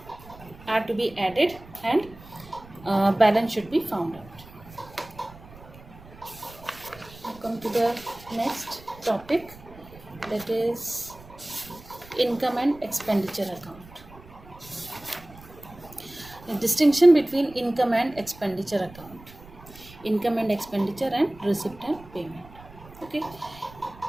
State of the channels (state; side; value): noise; right; rumble, 20 dB below the sound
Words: to be added, and balance should be found out. Now come to the next topic, that is income and expenditure account. The distinction between income and expenditure account, income and expenditure, and receipt and payment. Okay,